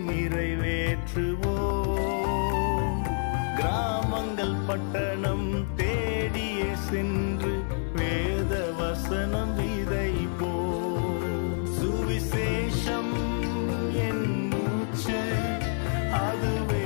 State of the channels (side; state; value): right; silent; digital silence